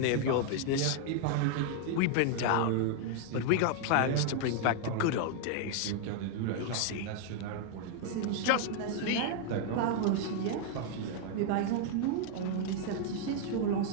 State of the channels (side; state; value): both; different; correlation 0.00